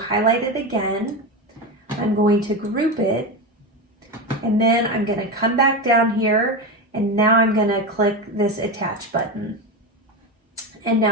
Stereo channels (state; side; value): normal; both; correlation 0.18